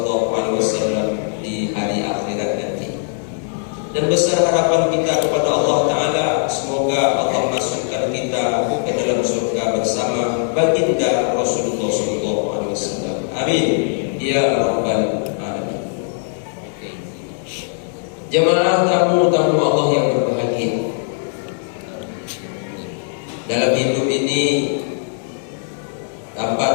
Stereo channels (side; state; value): right; silent; digital silence